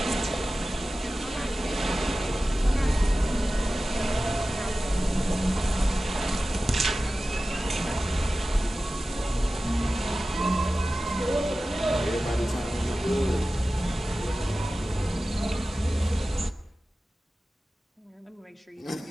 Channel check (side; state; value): both; normal; correlation 0.95